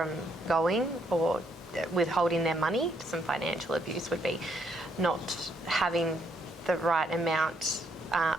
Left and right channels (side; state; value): both; normal; correlation 0.72